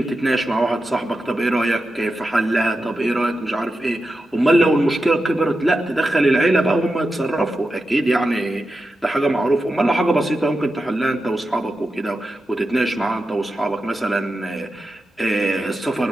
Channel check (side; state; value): both; normal; correlation 0.90